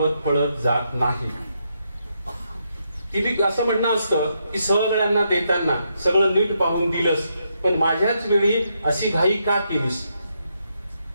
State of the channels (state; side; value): inverted; both; correlation -0.80